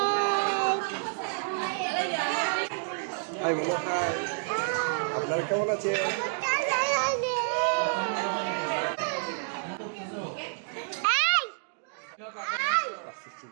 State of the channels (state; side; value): silent; left; digital silence